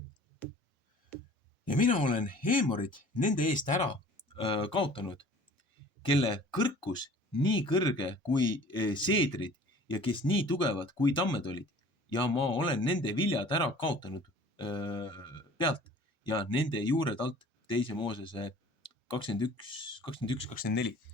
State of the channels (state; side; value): normal; both; correlation 0.48